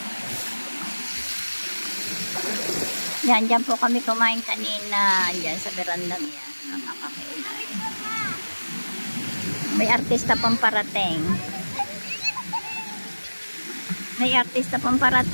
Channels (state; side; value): inverted; both; correlation -1.00